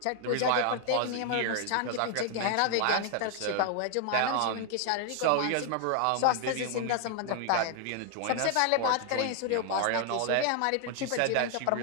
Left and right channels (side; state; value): both; different; correlation 0.00